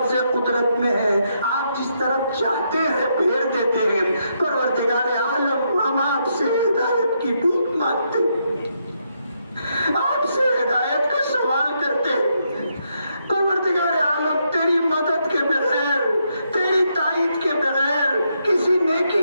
قدرت میں ہے، آپ جس طرف چاہتے ہیں پھیر دیتے ہیں۔ پروردگار عالم ہم آپ سے ہدایت کی بھیک مانگتے ہیں، آپ سے ہدایت کا سوال کرتے ہیں۔ پروردگار عالم تیری مدد کے بغیر، تیری تائید کے بغیر کسی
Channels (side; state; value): both; inverted; correlation -0.78